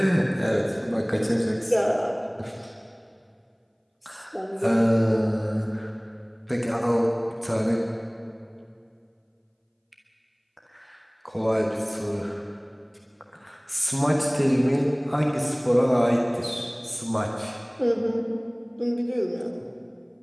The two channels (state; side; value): identical; both; correlation 1.00